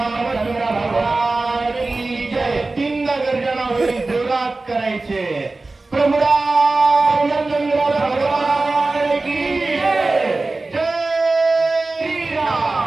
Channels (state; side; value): quieter; left; 3.3 dB